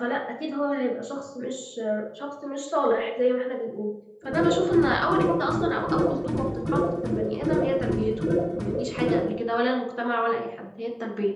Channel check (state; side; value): identical; both; correlation 1.00